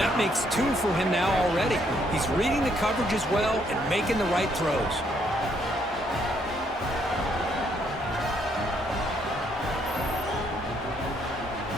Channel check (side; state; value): both; normal; correlation 0.71